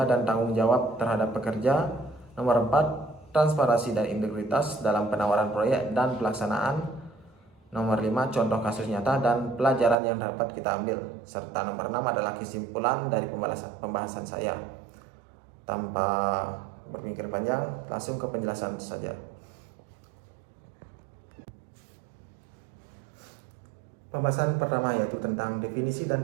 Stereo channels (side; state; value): left; drops out; at 10.0 s